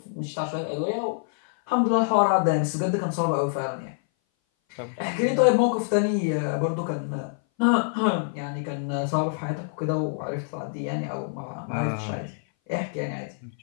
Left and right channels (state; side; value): silent; right; 58 dB below the other